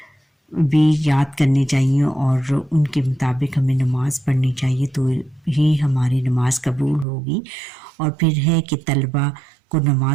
بھی یاد کرنے چاہیے، اور ان کے مطابق ہمیں نماز پڑھنی چاہیے، تو ہی ہماری نماز قبول ہوگی۔ اور پھر ہے کہ طلبہ کو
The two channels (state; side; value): drops out; left; at 7.1 s